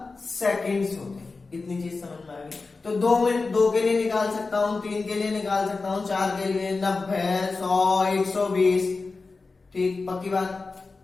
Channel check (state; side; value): quieter; right; 4.0 dB